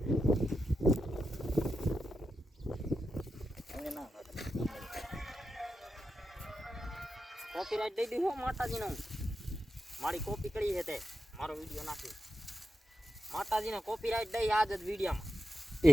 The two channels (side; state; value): both; normal; correlation 0.88